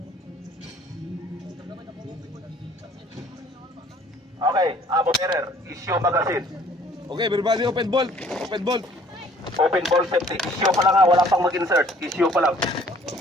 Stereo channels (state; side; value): normal; both; correlation 0.57